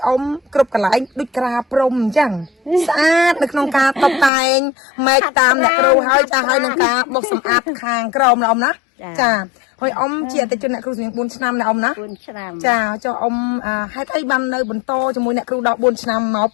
អ៊ំគ្រប់កន្លែងដូចក្រាព្រំអញ្ចឹងស្អាតនៅក្នុងការតុបតែងម៉េចតាមអ្នកគ្រូហើយចាហើយនឹងការបោសសម្អាតខាងក្រោមណាអ៊ំណាចាហើយអ៊ំជាអតិជនអ្នកគ្រូសនាង 4 ឆ្នាំណាអ៊ំណា 4 ឆ្នាំ ចាចុះអ៊ំហេតុអីបាននៅបន្តជាមួយអ្នកគ្រូដល់ 4 ឆ្នាំមក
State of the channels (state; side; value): drops out; right; at 4.3 s